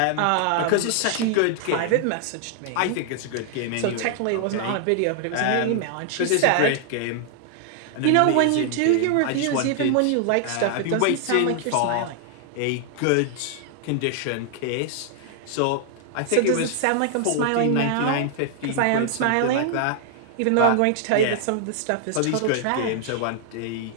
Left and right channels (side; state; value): both; different; correlation 0.00